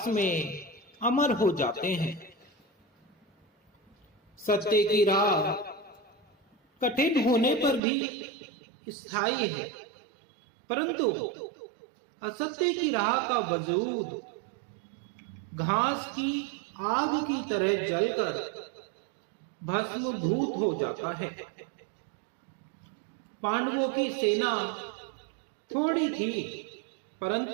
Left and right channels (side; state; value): left; drops out; at 7.8 s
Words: में अमर हो जाते हैं। सत्य की राह कठिन होने पर भी स्थायी है, परंतु असत्य की राह का वजूद घास की आग की तरह जलकर भस्मभूत हो जाता है। पांडवों की सेना थोड़ी थी,